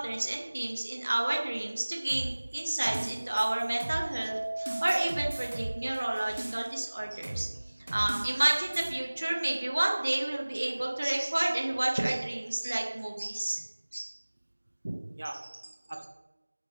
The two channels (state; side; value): inverted; both; correlation -1.00